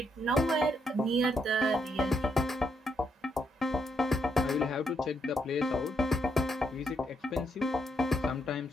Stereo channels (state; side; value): normal; both; correlation 0.77